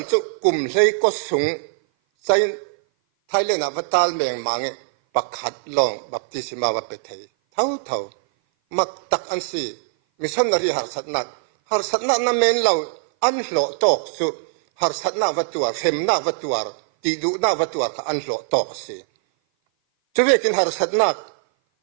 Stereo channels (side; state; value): left; silent; 57 dB below the other